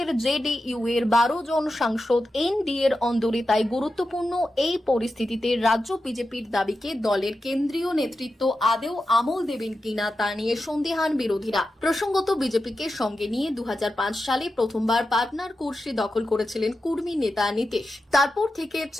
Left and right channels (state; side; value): normal; both; correlation 0.90